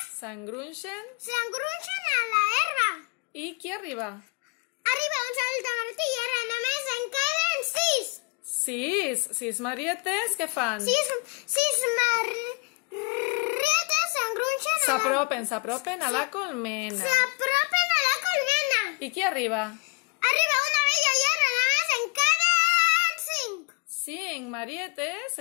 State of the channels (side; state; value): right; quieter; 32.4 dB